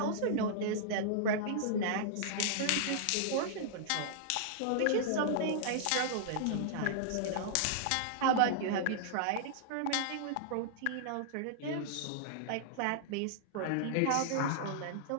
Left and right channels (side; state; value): both; different; correlation -0.01